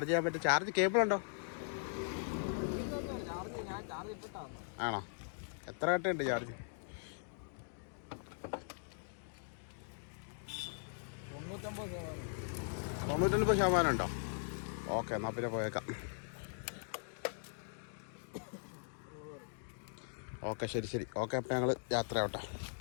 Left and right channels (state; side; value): silent; right; digital silence